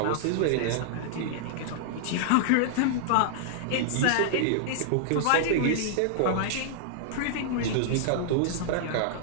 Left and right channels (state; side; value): different; both; correlation -0.01